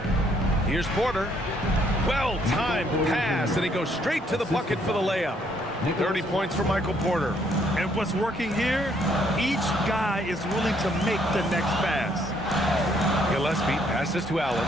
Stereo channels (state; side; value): normal; both; correlation 0.68